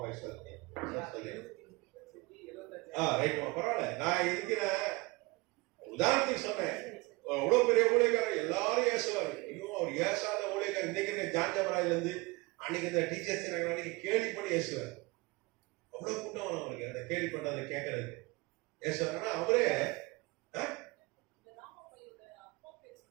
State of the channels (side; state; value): left; quieter; 24.7 dB